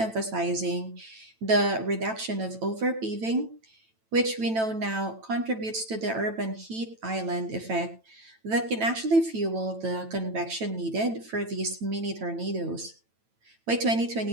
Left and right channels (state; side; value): late; left; 9.0 ms